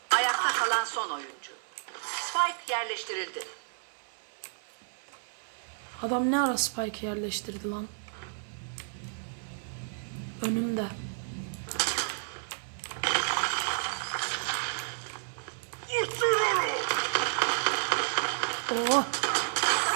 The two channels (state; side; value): silent; left; digital silence